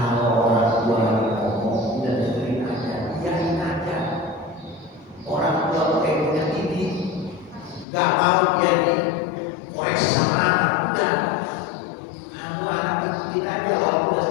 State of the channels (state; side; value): drops out; right; at 7.9 s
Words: orang tua ngomong, udah dengerin aja, biarin aja. Orang tua pakai punya tinggi, nggak mau dia dikoreksi sama anak, udah. Kamu anak ikutin aja, walaupun udah